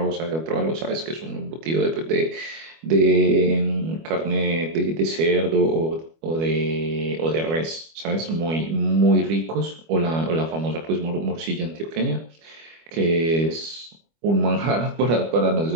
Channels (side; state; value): left; late; 25 ms